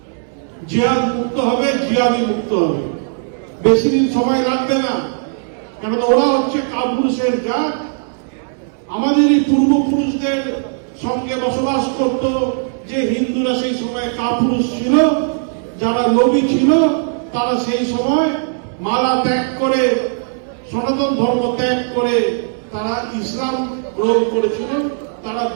জিহাদ মুক্ত হবে, জিহাদি মুক্ত হবে। বেশি দিন সময় লাগবে না, কেননা ওরা হচ্ছে কাপুরুষের জাত। আমাদেরই পূর্বপুরুষদের সঙ্গে বসবাস করত যে হিন্দুরা, সেই সময় কাপুরুষ ছিল। যারা নবী ছিল তারা সেই সময় মালা ত্যাগ করে, সনাতন ধর্ম ত্যাগ করে তারা ইসলাম গ্রহণ করেছিল। তারা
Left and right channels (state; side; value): silent; left; digital silence